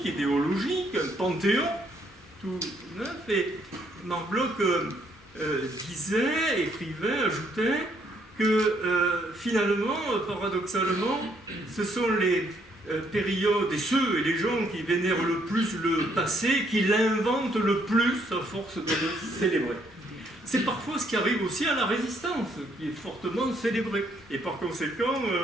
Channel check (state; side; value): normal; both; correlation 0.70